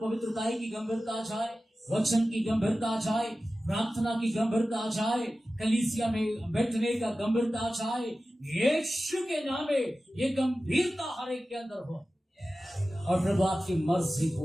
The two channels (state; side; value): normal; both; correlation 0.95